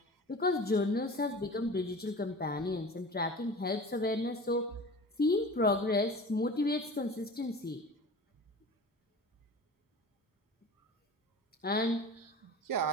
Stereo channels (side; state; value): both; normal; correlation 0.37